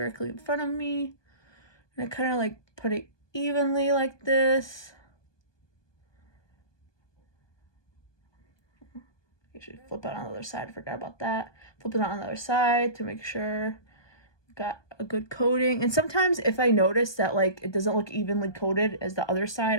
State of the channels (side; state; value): right; late; 1.2 ms